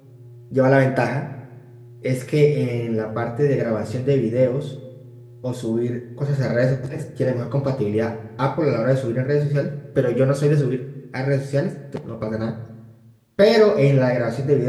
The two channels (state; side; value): identical; both; correlation 1.00